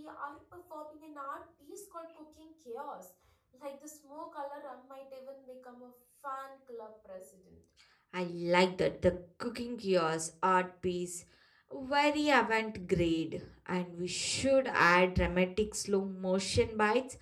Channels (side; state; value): both; identical; correlation 1.00